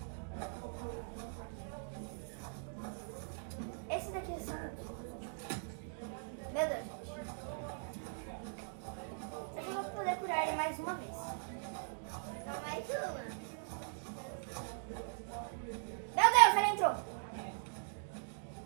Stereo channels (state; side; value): silent; left; digital silence